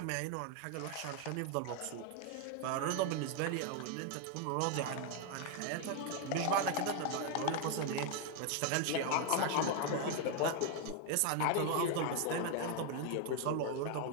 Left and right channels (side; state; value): both; different; correlation 0.01